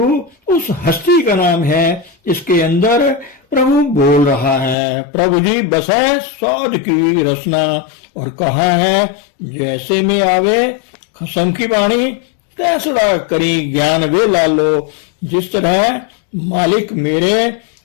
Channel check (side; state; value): right; drops out; at 4.8 s